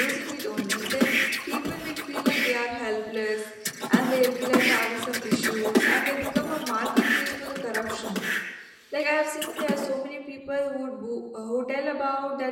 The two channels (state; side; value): identical; both; correlation 1.00